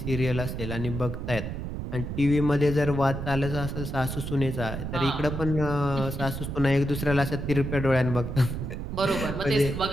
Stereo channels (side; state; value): right; noise; rumble, 5 dB below the sound